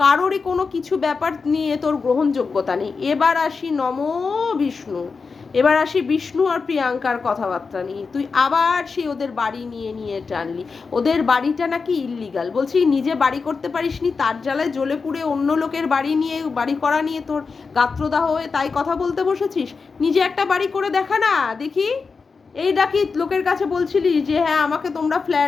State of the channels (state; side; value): quieter; right; 4.8 dB